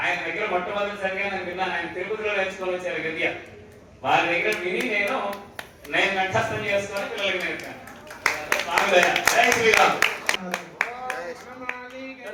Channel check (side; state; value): both; identical; correlation 1.00